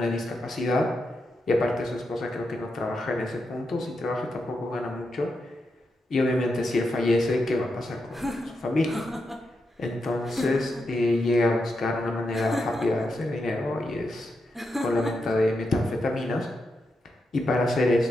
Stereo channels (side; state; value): both; normal; correlation 0.85